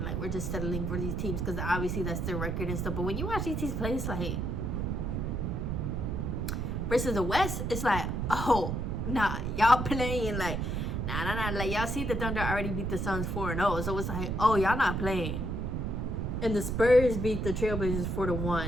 Like, we're just settling for these teams because obviously that's their record and stuff. But when you watch these teams play, it's like, versus the West, it's like, oh nah, y'all playing like nah. Like, y'all see the Thunder already beat the Suns 4-0, so it's like, oh, y'all not playing. And the Spurs beat the Trailblazers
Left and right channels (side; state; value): right; noise; rumble, 1 dB below the sound